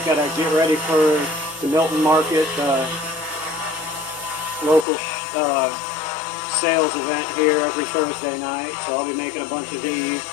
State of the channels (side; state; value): right; drops out; at 4.9 s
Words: got to get ready for the Milton Market, local sales event here every Thursday night. So I'll be making a bunch of these.